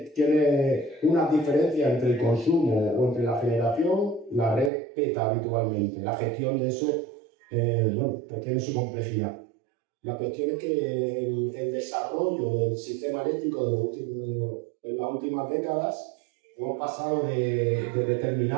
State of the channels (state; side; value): drops out; left; at 4.7 s